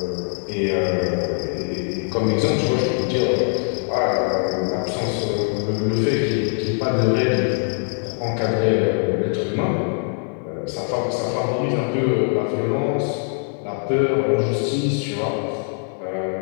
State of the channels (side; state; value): right; silent; 57 dB below the other